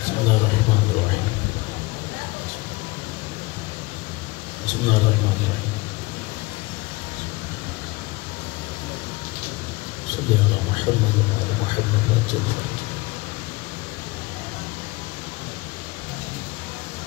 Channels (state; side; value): quieter; right; 22.8 dB